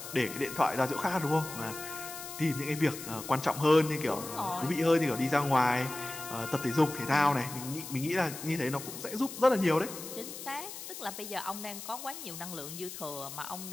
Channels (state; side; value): noise; left; hiss, 10 dB below the sound